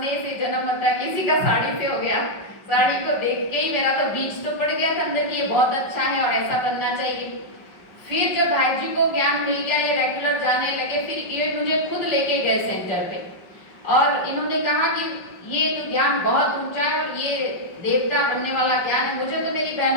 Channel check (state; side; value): late; right; 5.3 ms